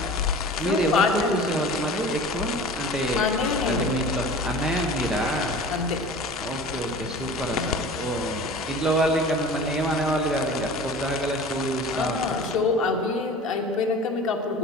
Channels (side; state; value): both; normal; correlation 0.39